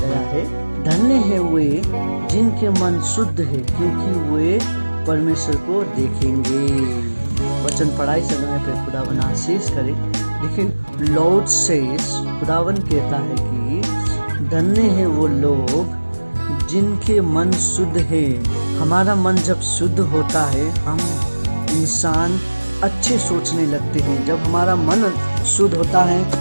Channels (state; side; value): inverted; both; correlation -1.00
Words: है, धन्य है वे जिनके मन शुद्ध है क्योंकि वे परमेश्वर को देखेंगे। वचन पढ़ाई समय पे खुदावन आशीष करे। लेकिन लॉर्ड सेज, खुदावन कहता है कि धन्य है वो लोग जिनके मन शुद्ध है। हमारा मन जब शुद्ध होता है हम इंसान अच्छे सोचने लगते हैं। जब हमारा मन शुद्ध होता है